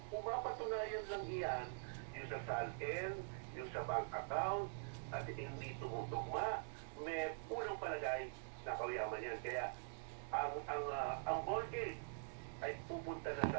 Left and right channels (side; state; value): left; silent; digital silence